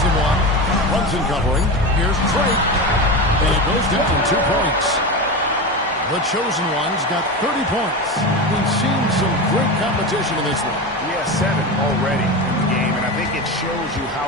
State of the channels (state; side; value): normal; both; correlation 0.22